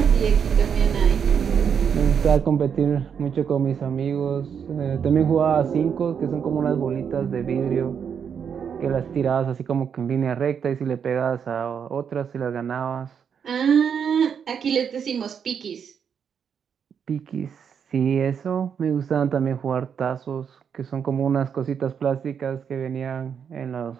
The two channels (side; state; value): left; quieter; 7.3 dB